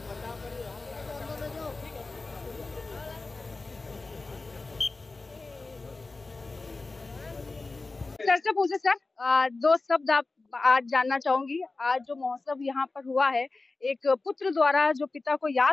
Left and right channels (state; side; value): quieter; right; 3.5 dB